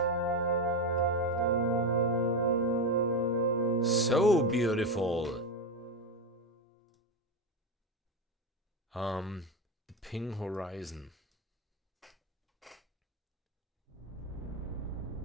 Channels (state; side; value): normal; both; correlation 0.13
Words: So beautiful. The Ping Horizon.